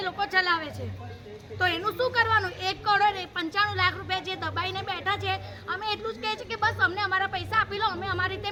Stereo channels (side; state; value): both; identical; correlation 1.00